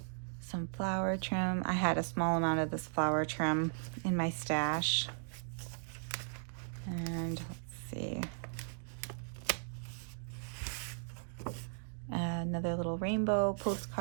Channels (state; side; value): silent; left; digital silence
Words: Some flower trim. I had a small amount of this flower trim in my stash. And let's see. Another little rainbow